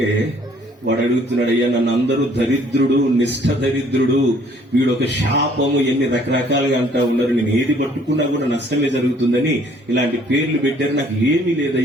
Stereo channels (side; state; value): both; normal; correlation 0.60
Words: వాడు అడుగుతున్నాడు, అయ్యా నన్ను అందరూ దరిద్రుడు, నిష్ఠ దరిద్రుడు, వీడు ఒక శాపము, ఎన్ని రకరకాలుగా అంటా ఉన్నారు, నేను ఏది పట్టుకున్నా కూడా నష్టమే జరుగుతుందని ఇలాంటి పేర్లు పెట్టారు, నాకు ఏమీ